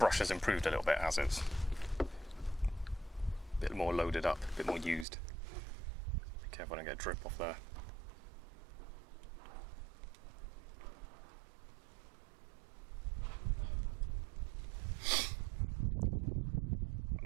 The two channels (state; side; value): drops out; left; at 5.1 s